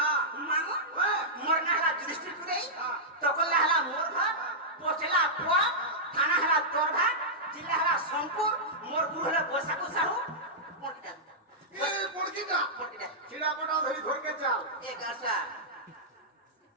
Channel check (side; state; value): both; normal; correlation -0.12